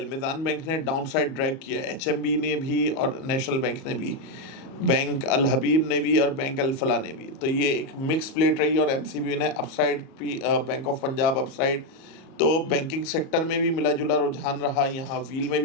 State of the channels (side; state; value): right; late; 37 ms